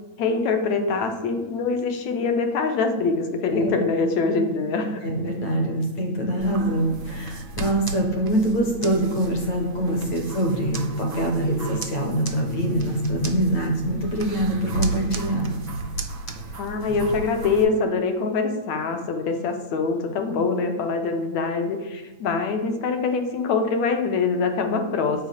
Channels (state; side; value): late; right; 8.9 ms